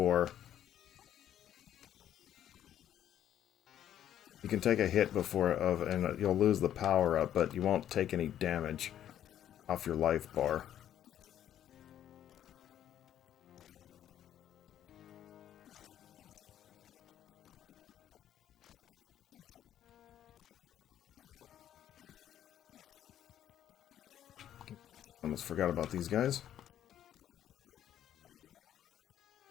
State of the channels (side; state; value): right; quieter; 10.9 dB